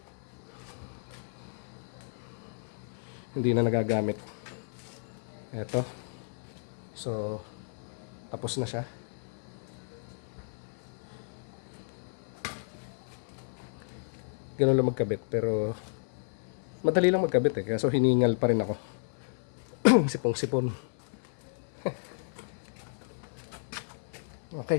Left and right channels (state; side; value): silent; right; 56 dB below the other